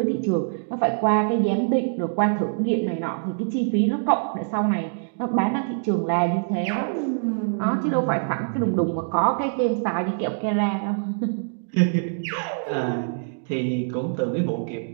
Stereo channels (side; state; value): left; silent; digital silence